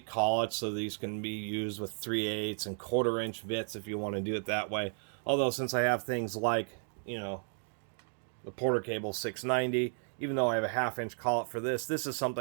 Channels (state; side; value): silent; left; 55 dB below the other